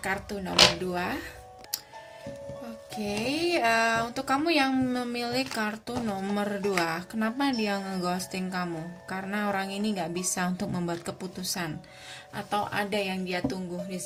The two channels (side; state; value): both; identical; correlation 1.00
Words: kartu nomor 2. Oke, untuk kamu yang memilih kartu nomor 2, kenapa dia ngeghosting kamu? Karena orang ini nggak bisa untuk membuat keputusan, atau ada yang dia tunggu di